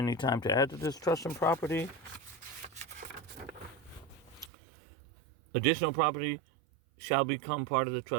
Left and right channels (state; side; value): drops out; left; at 4.5 s